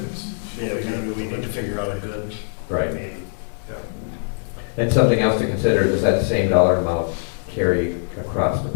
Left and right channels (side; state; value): right; silent; digital silence